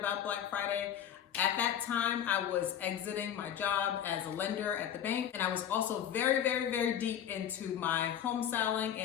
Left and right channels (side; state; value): right; quieter; 9.7 dB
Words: Black Friday. At that time, I was exiting my job as a lender at the bank, and I was also very deep into my home styling